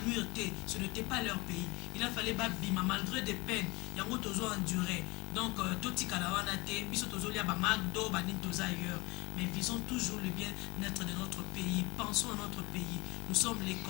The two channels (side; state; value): right; quieter; 24.5 dB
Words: té, ce n'était pas leur pays. Il a fallu ba bima malgré des peines yango tozo endurer. Donc totika la wana té biso tozo lia ba magdo ba ni toza ailleurs. Mais visons toujours le bien-être de notre pays. Pensons à notre pays. Nous sommes les